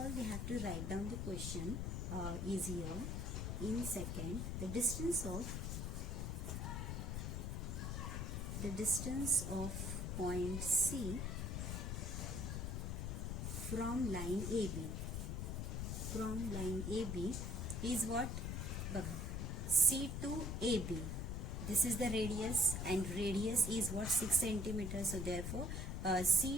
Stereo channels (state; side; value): noise; left; rumble, 2 dB below the sound